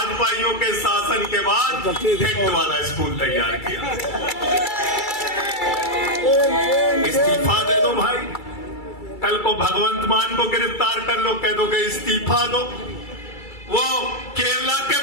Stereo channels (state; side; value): late; right; 2.3 ms